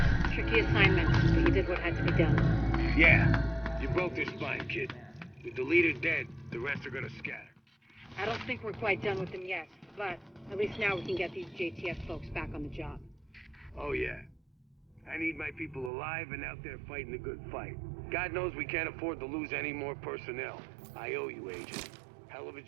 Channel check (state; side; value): drops out; left; at 15.9 s